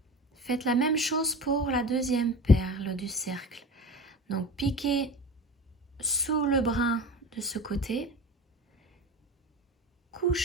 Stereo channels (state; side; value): normal; both; correlation 0.34